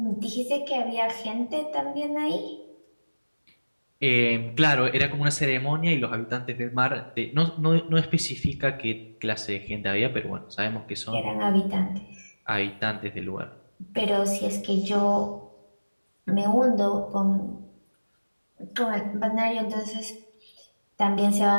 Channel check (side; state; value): both; inverted; correlation -1.00